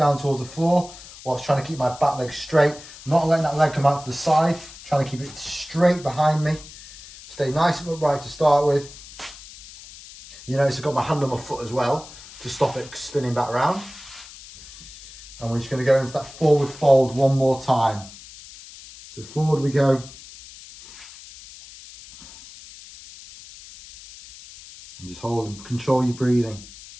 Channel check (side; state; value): left; noise; hiss, 17 dB below the sound